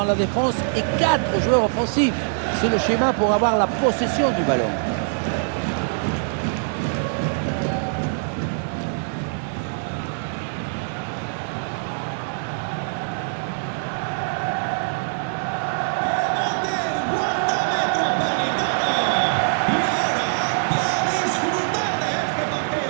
la défense et 4 joueurs offensifs. C'est le schéma pour avoir la possession du ballon.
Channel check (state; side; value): silent; left; digital silence